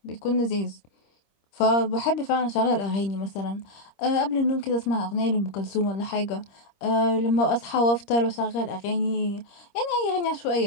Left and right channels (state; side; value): late; right; 26 ms